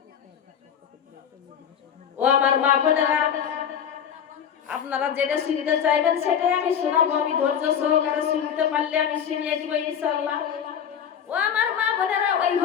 ও আমার মা বোনেরা, আপনারা যেটা শুনতে চাইবেন সেটাই আমি শোনাবো, আমি ধৈর্য সহকারে শুনতে পারলে আমি শুনিয়ে দিব ইনশাআল্লাহ। ও আমার মা বোনেরা, ওই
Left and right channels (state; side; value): quieter; right; 8.3 dB